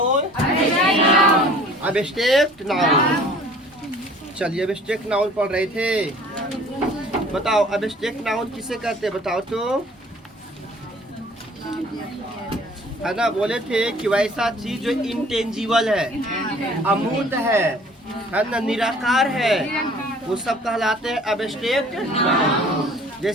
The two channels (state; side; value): normal; both; correlation 0.51